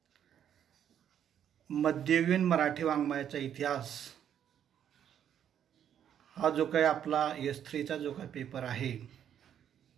मध्ययुगीन मराठी वाङ्मयाचा इतिहास हा जो काही आपला S3 चा जो काही पेपर आहे,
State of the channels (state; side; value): quieter; left; 9.5 dB